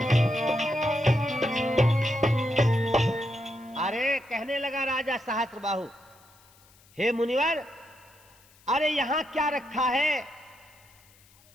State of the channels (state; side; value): noise; left; hiss, 29 dB below the sound